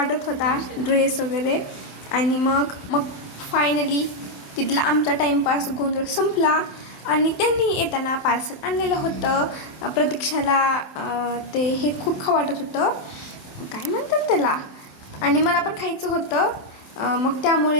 होता ड्रेस वगैरे. आणि मग फायनली तिथला आमचा टाईमपास गोंधळ संपला आणि त्यांनी येताना पार्सल आणलेलं होतं. प्रतीक्षाला ते हे खूप खावं वाटत होतं, काय म्हणतात त्याला, आणि मला पण खायचं होतं. मग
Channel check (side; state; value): right; late; 28 ms